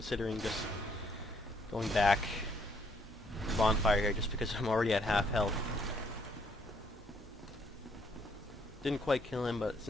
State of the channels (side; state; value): both; normal; correlation 0.67